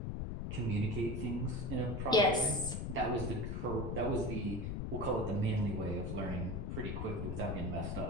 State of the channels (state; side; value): noise; left; rumble, 3 dB below the sound